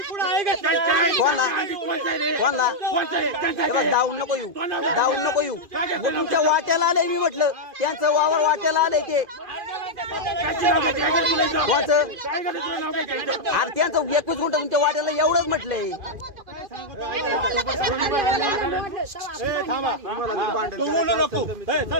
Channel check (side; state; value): left; late; 2.5 ms